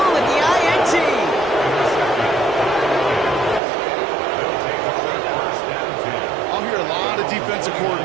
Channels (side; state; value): left; drops out; at 3.6 s